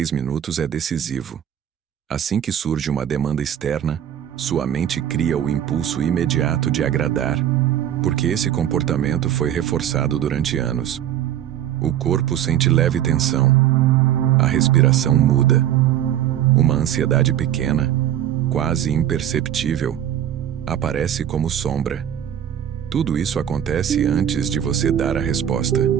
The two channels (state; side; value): quieter; left; 10.8 dB